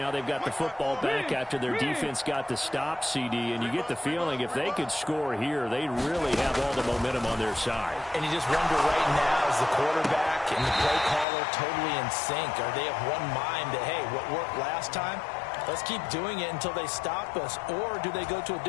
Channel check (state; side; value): drops out; right; at 11.2 s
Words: they've got the football back after their defense got the stop, CD. And you get the feeling if they could score here, they really have all the momentum on their side. And you just wonder right now, is the quarterback and the play caller totally in sync? Are they of one mind that, hey, what worked last time? Let's keep doing it until they stop us. Or do they go to a